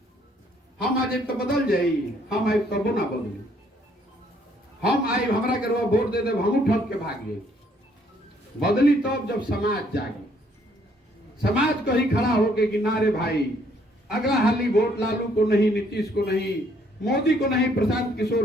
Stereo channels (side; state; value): both; normal; correlation 0.66